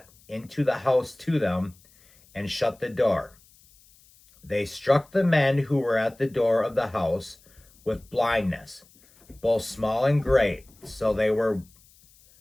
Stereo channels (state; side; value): noise; left; hiss, 29 dB below the sound